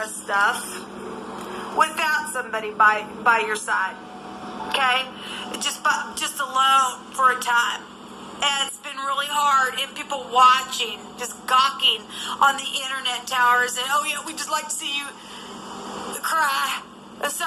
of stuff without somebody by your side. Okay? Just alone for a time. And it's been really hard, and people watching, just gawking on the internet towers, and oh yeah, we just like to see you cry. There's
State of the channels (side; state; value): both; identical; correlation 1.00